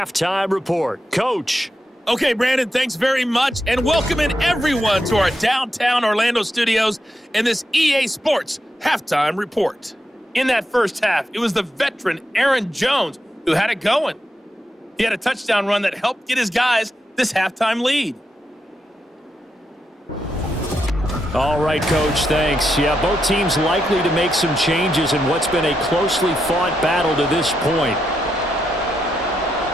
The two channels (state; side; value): normal; both; correlation 0.84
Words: Report. Coach. Okay, Brandon, thanks very much, and welcoming everyone to our downtown Orlando studios in this EA Sports Halftime Report. In that first half, it was the veteran Aaron Jones who had it going. He had a touchdown run that helped get his guys this halftime lead. All right, Coach, thanks. Yeah, both teams likely to make some changes in what's been a closely fought battle to this point.